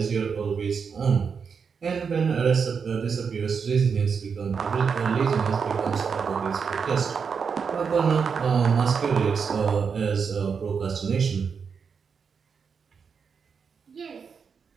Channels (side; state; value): left; quieter; 6.1 dB